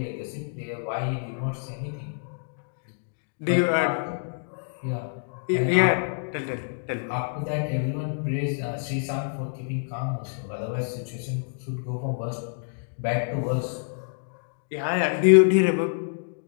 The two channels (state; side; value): silent; right; digital silence